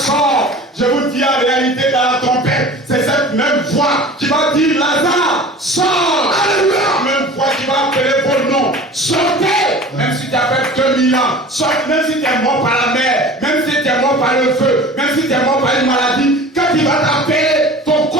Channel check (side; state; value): both; normal; correlation 0.40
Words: Je vous dis en réalité dans la trompette, c'est cette même voix qui va dire Lazare sort. Alléluia. La même voix qui va appeler vos noms. Sortez. Même si tu as fait 2000 ans, sortez. Même si tu es mort par la mer, même si tu es mort par le feu, même si tu es mort par une maladie, quand il va t'appeler, ton